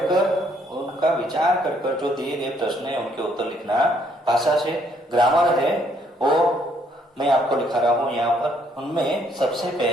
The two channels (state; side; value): normal; both; correlation 0.68